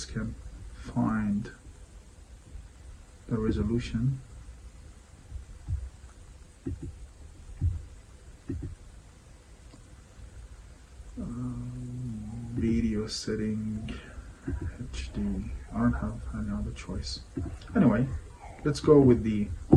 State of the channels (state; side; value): identical; both; correlation 1.00